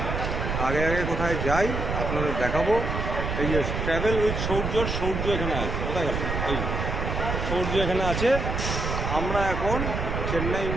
আগে আগে কোথায় যাই আপনাদের দেখাবো। এই যে ট্রাভেল উইথ সূর্য এখানে আছে। কোথায় গেল? এই সূর্য এখানে আছে। আমরা এখন চেন্নাই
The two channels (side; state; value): right; noise; rumble, 2 dB below the sound